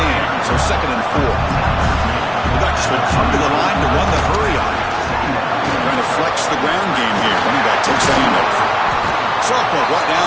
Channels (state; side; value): identical; both; correlation 1.00